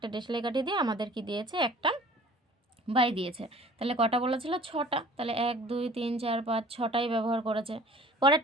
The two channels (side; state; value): both; normal; correlation 0.49